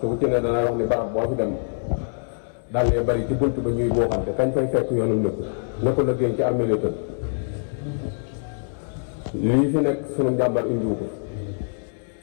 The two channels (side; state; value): right; silent; digital silence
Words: bu ci ne danay wax ni barab boo fi dem daal lee bari ci bunt ba ñuy booxante kañ fay fekk yoonum nëkk na ko liggéey ci armée tëdd lii fi nekk sunu njàmbar indiwu ko